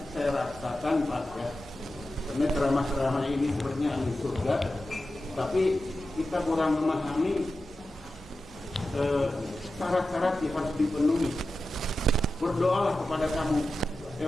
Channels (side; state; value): both; normal; correlation 0.92